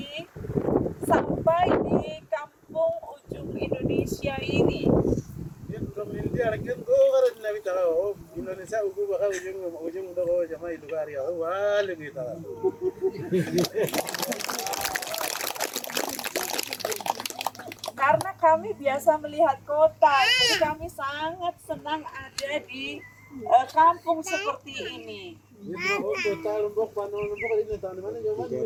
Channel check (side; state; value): both; identical; correlation 1.00